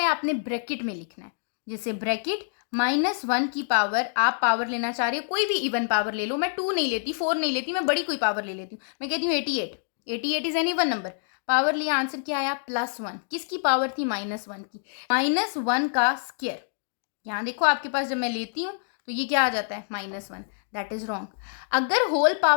आपने ब्रैकेट में लिखना है, जैसे ब्रैकेट -1 की पावर, आप पावर लेना चाह रहे हो, कोई भी इवन पावर ले लो, मैं 2 नहीं लेती, 4 नहीं लेती, मैं बड़ी कोई पावर ले लेती हूँ, मैं कहती हूँ 88। 88 is an even number, power लिया, आंसर क्या आया +1। किसकी पावर थी? -1 की। -1 का स्क्वायर, यहाँ देखो आपके पास जब मैं लेती हूँ तो ये क्या आ जाता है? -1। That is wrong. अगर होल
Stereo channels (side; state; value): right; silent; digital silence